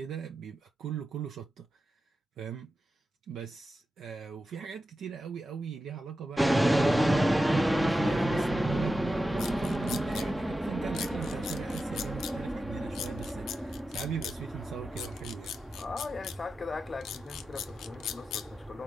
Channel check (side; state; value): both; normal; correlation 0.91